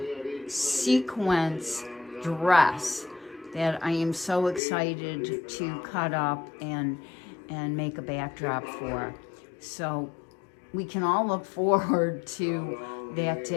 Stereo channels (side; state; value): right; drops out; at 4.6 s